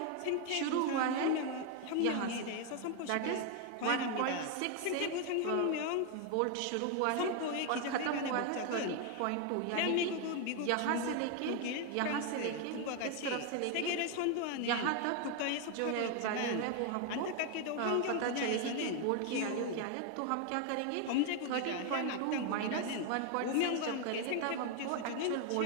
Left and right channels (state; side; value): different; both; correlation 0.01